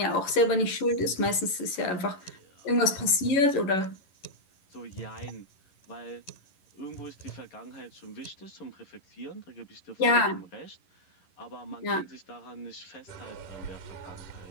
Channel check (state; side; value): late; right; 11 ms